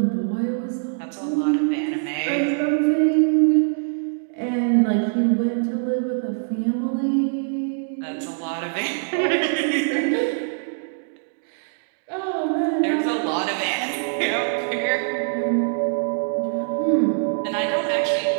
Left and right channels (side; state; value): left; silent; digital silence